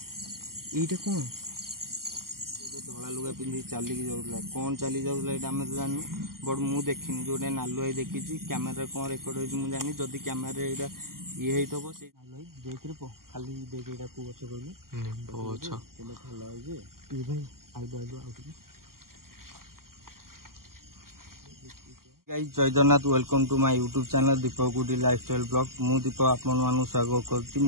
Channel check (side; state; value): left; late; 0.92 ms